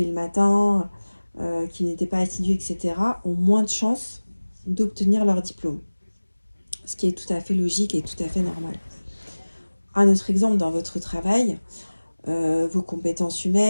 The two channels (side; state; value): both; inverted; correlation -1.00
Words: le matin, qui n'étaient pas assidus, etc., ont moins de chances d'obtenir leur diplôme. Ce qui est tout à fait logique et tout à fait normal. Un autre exemple dans votre travail, vos compétences